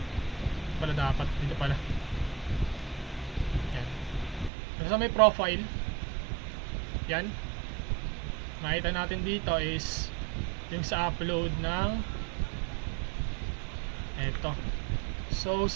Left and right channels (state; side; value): drops out; left; at 4.5 s